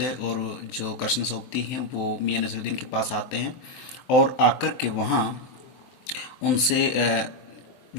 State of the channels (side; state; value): right; late; 23 ms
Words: और जो कृष्ण सोबती हैं वो मियां नसरुद्दीन के पास आते हैं और आकर के वहाँ उनसे